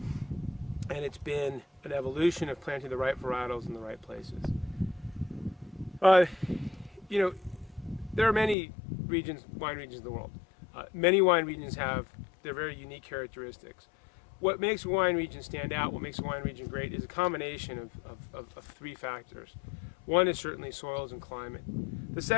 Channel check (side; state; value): right; drops out; at 8.6 s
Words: And it's been an evolution of planting the right varietals in the right places. There are many wine regions in the world. Many wine regions have they're very unique characteristics. What makes a wine region stand out, what makes a wine region great, is a combination of three factors. One is certainly soils and climate. The